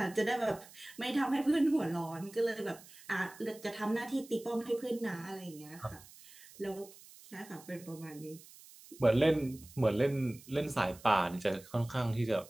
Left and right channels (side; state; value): right; noise; hiss, 20 dB below the sound